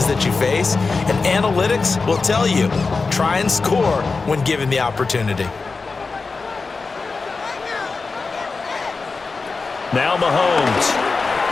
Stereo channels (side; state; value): right; quieter; 4.2 dB